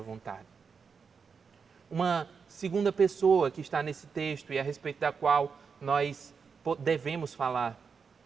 Uma segunda pessoa que está nesse texto e a respeito da qual nós devemos falar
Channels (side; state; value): left; quieter; 5.7 dB